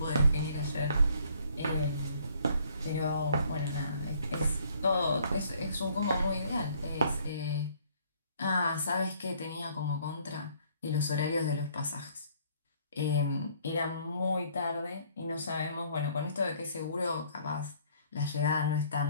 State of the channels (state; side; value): inverted; both; correlation -0.62